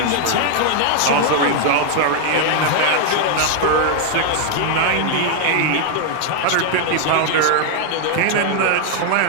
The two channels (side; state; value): both; different; correlation 0.00